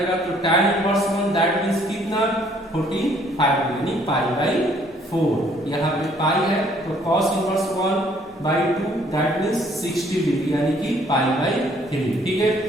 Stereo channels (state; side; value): normal; both; correlation 0.62